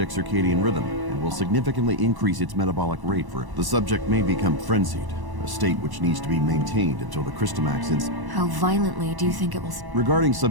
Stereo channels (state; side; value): late; left; 1.0 ms